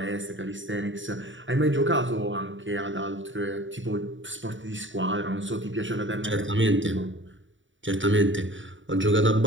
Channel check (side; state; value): left; late; 0.55 ms